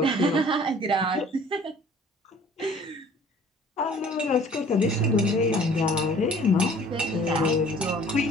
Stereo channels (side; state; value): both; normal; correlation 0.52